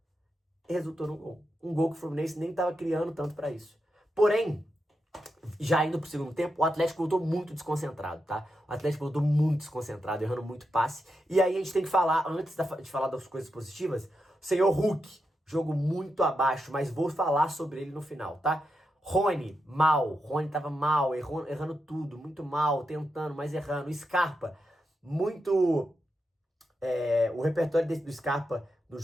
resultou no gol. Um gol que o Fluminense nem estava criando tanto para isso. Porém, já indo pro segundo tempo, o Atlético voltou muito desconcentrado, tá? O Atlético voltou muito desconcentrado, errando muito passe. E aí a gente tem que falar, antes de falar das coisas positivas, o senhor Hulk, jogo muito abaixo, mas vou falar sobre ele no final, tá? Rony, mal. Rony tava mal, errando tudo, muito mal, tentando, mas errando. Scarpa, muito... o repertório do Scarpa no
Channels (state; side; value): normal; both; correlation 0.86